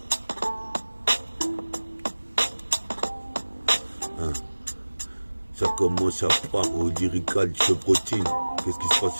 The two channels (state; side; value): inverted; both; correlation -1.00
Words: Ça commence à part au lyrical chevrotine. Qu'est-ce qui se passe